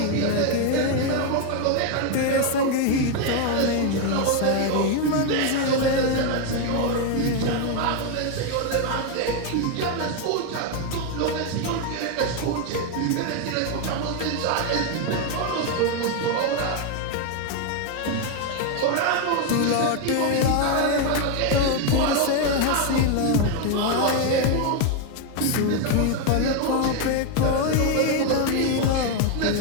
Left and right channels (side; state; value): both; different; correlation 0.01